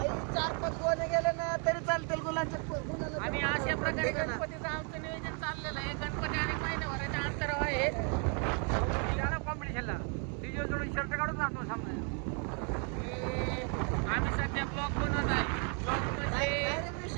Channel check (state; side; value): quieter; left; 39.3 dB